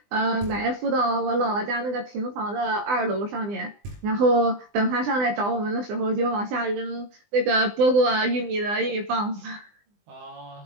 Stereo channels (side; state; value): left; late; 20 ms